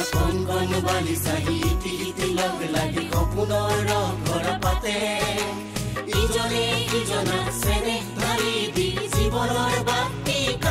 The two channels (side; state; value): both; identical; correlation 1.00